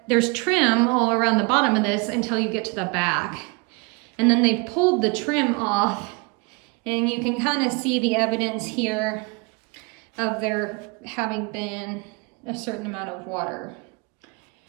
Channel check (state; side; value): quieter; left; 30.7 dB